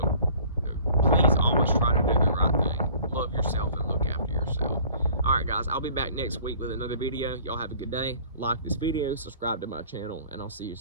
Please always try to do the right thing. Love yourself and look after yourself. Alright guys, I'll be back next week with another video. Y'all have a good day. Like this video, subscribe to my channel, and I'll see you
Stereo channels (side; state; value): both; inverted; correlation -0.51